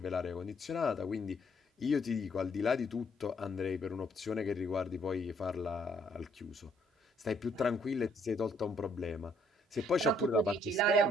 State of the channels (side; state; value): both; normal; correlation 0.67